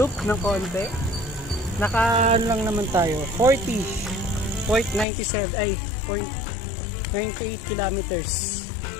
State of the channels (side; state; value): right; drops out; at 5.1 s